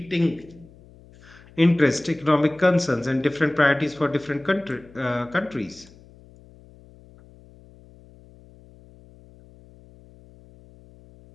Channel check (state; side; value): noise; left; hum, 24 dB below the sound